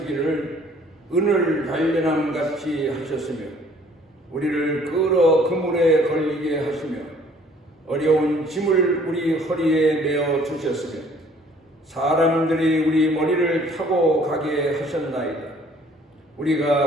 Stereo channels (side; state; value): both; normal; correlation 0.57